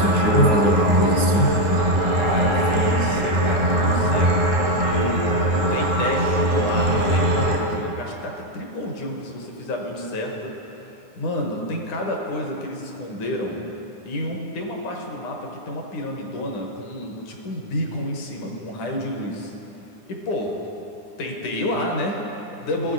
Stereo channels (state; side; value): late; right; 9.7 ms